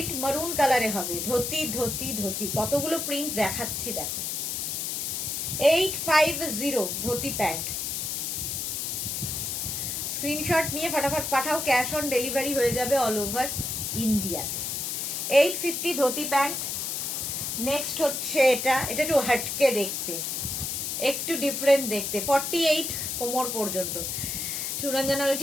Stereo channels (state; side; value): noise; left; hiss, 2 dB below the sound